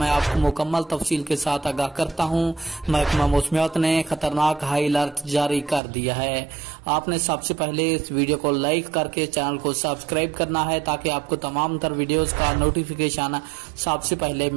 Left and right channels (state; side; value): drops out; left; at 5.8 s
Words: आपको मुकम्मल तफसील के साथ आगाह करता हूँ। महकमा मौसमियात ने खतरनाक हाई अलर्ट जारी कर दिया है। आपने सबसे पहले इस वीडियो को लाइक करके चैनल को सब्सक्राइब करना है ताकि आपको तमाम तर वीडियोज का नोटिफिकेशन सबसे पहले